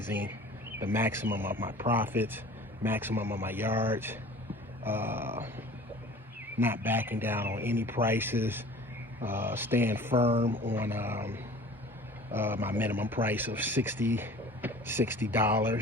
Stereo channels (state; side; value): normal; both; correlation 0.44